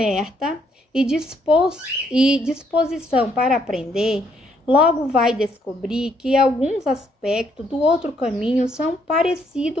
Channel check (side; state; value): both; normal; correlation 0.71